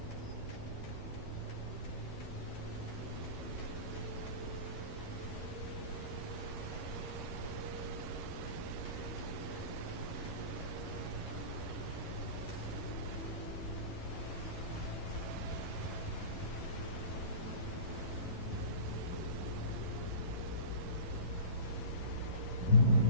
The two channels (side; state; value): right; late; 11 ms